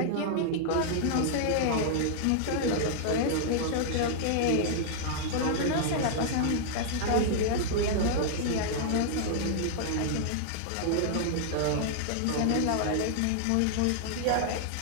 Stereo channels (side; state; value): both; different; correlation -0.01